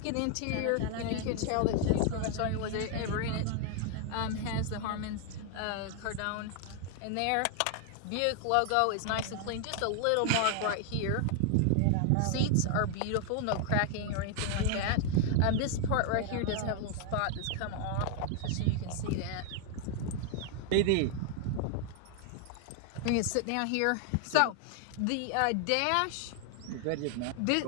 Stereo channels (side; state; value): both; different; correlation 0.00